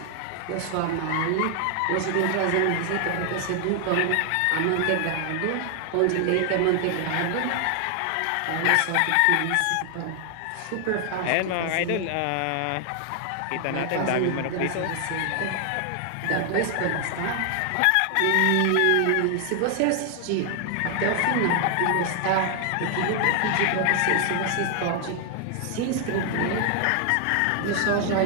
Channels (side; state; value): both; different; correlation 0.00